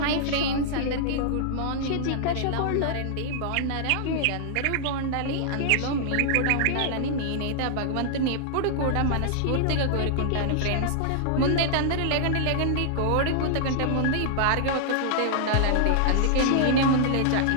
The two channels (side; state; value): both; different; correlation -0.01